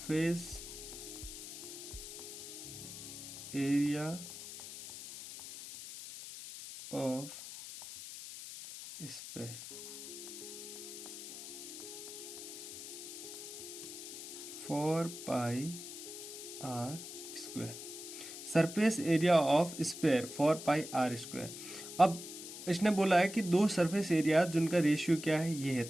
area of sphere 4πr²। Surface area of sphere 4πr²। अब इसने बोला है कि दो सरफेस एरिया जिनका रेशियो क्या है ये है,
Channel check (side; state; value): left; noise; hiss, 10 dB below the sound